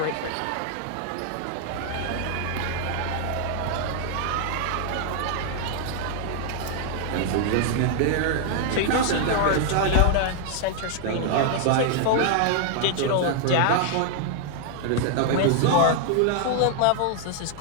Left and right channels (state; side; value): different; both; correlation 0.00